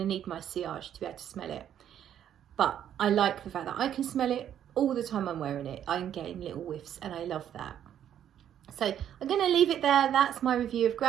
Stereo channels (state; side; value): quieter; left; 10.1 dB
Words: need my sillage to be able to smell it. But I like the fact that I can smell it all the time I'm wearing it. I'm getting little whiffs and I love that. So I'm going to leave it there. That's my review of